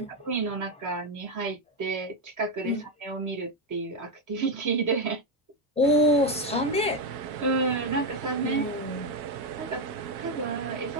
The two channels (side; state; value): both; normal; correlation 0.07